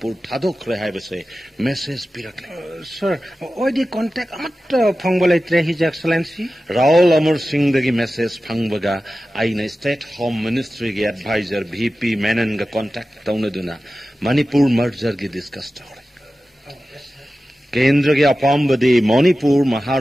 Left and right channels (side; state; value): both; normal; correlation 0.94